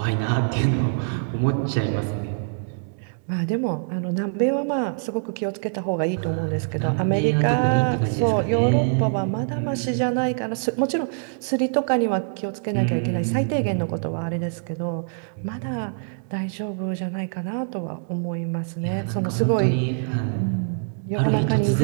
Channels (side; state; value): left; silent; digital silence